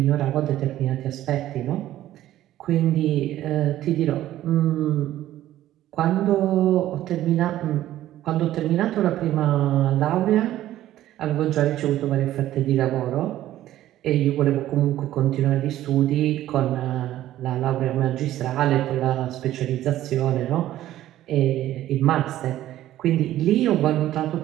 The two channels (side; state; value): left; quieter; 13.6 dB